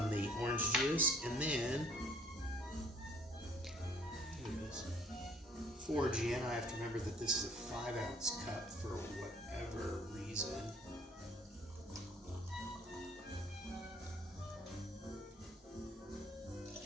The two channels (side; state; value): both; normal; correlation 0.59